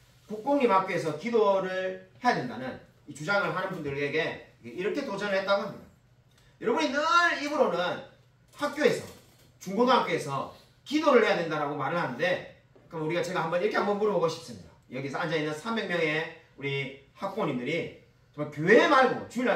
국공립학교에서 기도를 해야 된다는 이 주장을 하는 분들에게 이렇게 도전을 했다고 합니다. 여러분이 늘 입으로는 학교에서 중고등학교에서 기도를 해야 된다라고 말을 하는데 그럼 제가 이렇게 한번 물어보고 싶습니다. 여기서 앉아있는 300명의 우리 학부모님들이 정말 교회 말고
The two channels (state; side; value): identical; both; correlation 1.00